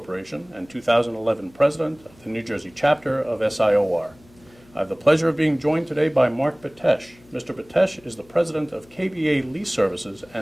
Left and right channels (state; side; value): noise; left; hum, 27 dB below the sound